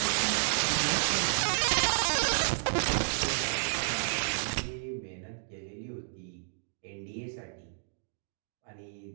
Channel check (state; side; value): silent; left; digital silence